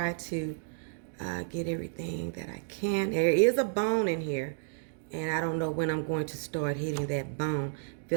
to get everything that I can. There is a bone in here. And I don't know when I'm going to start hitting that bone.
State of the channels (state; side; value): silent; left; digital silence